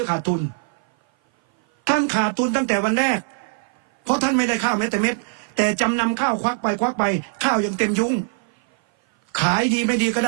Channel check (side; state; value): left; silent; 56 dB below the other